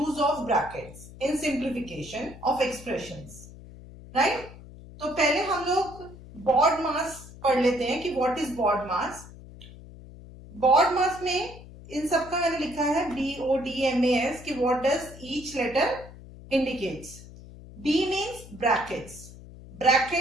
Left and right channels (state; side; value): noise; left; hum, 17 dB below the sound